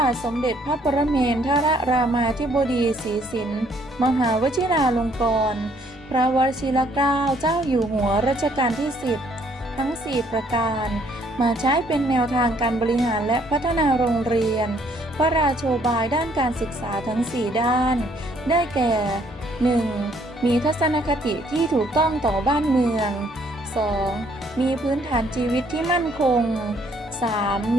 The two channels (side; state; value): both; normal; correlation 0.65